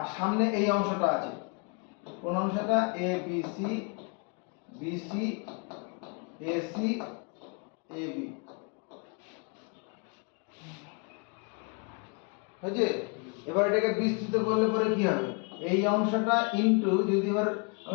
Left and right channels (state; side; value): quieter; right; 34.9 dB